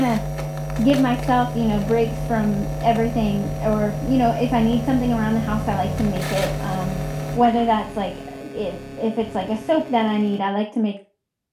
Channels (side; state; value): both; identical; correlation 1.00